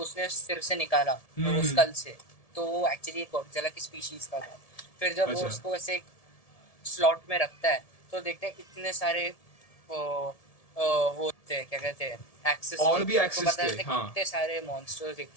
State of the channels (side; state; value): right; late; 1.7 ms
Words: सिर से निकाला वो हम्म स्कल से, तो वो एक्चुअली एक गॉडजिला की स्पीशीज का था। फिर जब वो अच्छा उसको ऐसे एक स्लॉट में रखता है तो देखते हैं इतने सारे वो होते हैं, क्या कहते हैं, एक्सेस और थे। भी तो एक्सेस पता थे चलता है हाँ कितने सारे